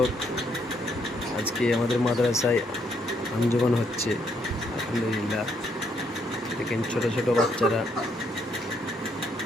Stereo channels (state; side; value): normal; both; correlation 0.73